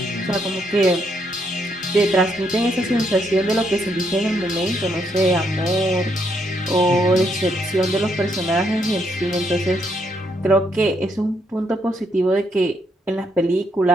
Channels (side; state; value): both; normal; correlation 0.75